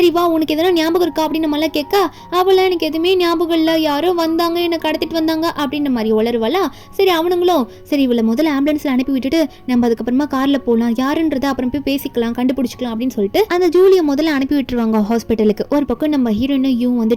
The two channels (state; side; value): identical; both; correlation 1.00